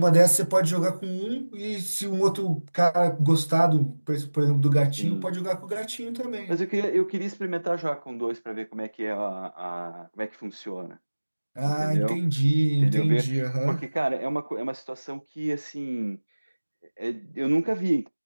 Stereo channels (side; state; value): both; inverted; correlation -1.00